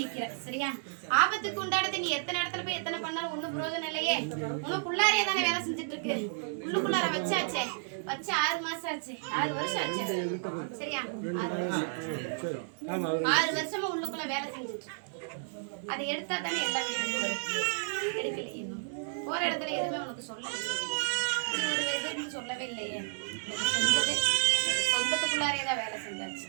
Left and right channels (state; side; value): silent; left; digital silence